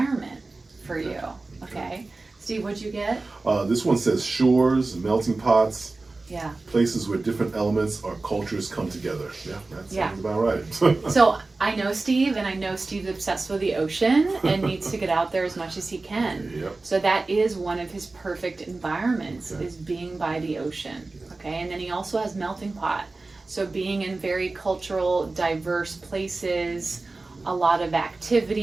for you. Okay. Steve, what'd you get? This one says shores, melting pots. Yeah. Places where different elements or cultures come together. Yeah, that sounds about right. So I know Steve, and I know Steve's obsessed with the ocean and needs to get out there as much as he can. Yep. So that is one of his perfect environments, is being by the ocean. Okay, and then he also has melting pot. So being in very cultural, diverse places, a lot of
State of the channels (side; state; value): left; quieter; 3.4 dB